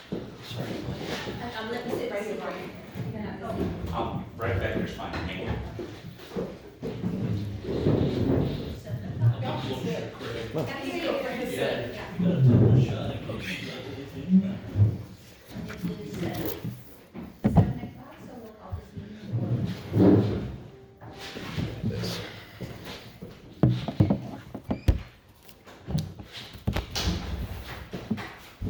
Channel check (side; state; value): both; identical; correlation 1.00